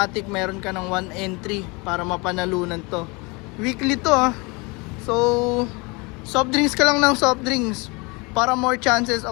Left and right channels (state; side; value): quieter; right; 27.6 dB